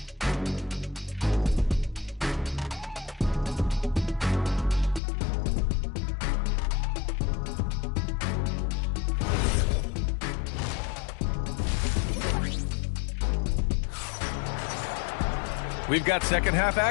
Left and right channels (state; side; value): drops out; right; at 5.0 s